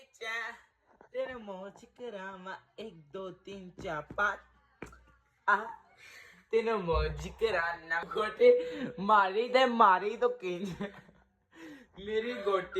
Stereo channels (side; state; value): both; identical; correlation 1.00